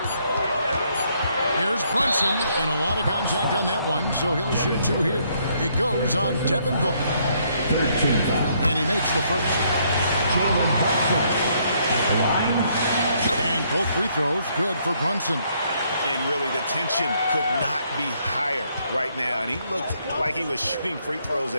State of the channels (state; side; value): inverted; both; correlation -0.70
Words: Here's Brunson, and a lot of contact on that one, so he'll shoot 2 here. It goes on Devin Booker. And he makes the first. And both free throws good for Brunson. And really, the tension could not be higher right now. And he looked like he was shooting free throws